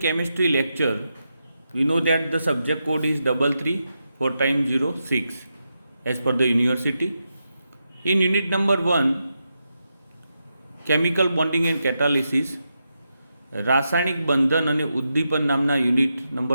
lecture, we know that the subject code is 334 as per the university. In unit number 1, chemical bonding and catalysis, રાસાયણિક બંધન અને ઉદ્દીપન નામના યુનિટ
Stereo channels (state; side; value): inverted; both; correlation -0.86